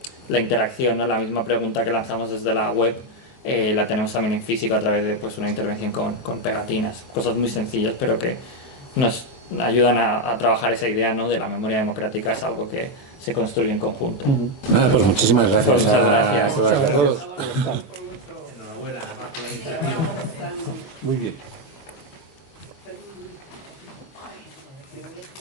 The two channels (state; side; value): late; right; 22 ms